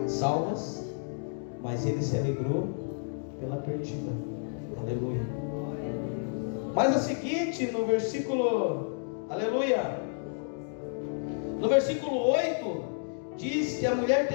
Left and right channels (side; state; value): right; silent; digital silence